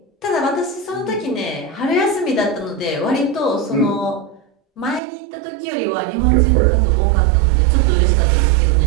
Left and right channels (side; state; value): left; drops out; at 5.0 s